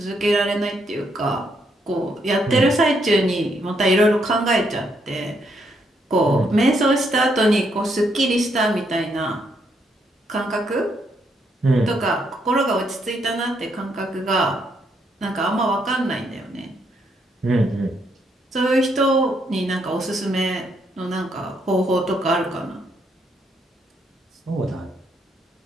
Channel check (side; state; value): both; normal; correlation 0.75